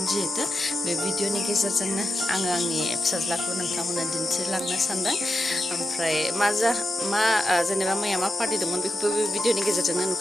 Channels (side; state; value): both; normal; correlation 0.89